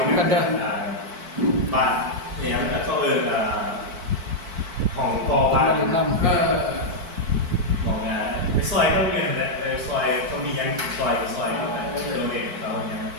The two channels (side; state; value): left; late; 4.5 ms